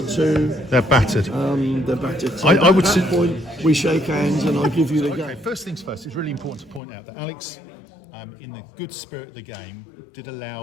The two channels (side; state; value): right; drops out; at 6.8 s